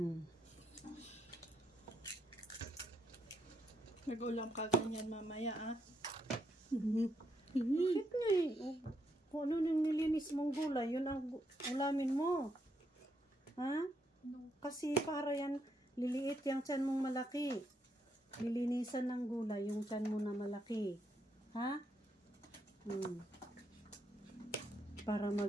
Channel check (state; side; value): normal; both; correlation 0.78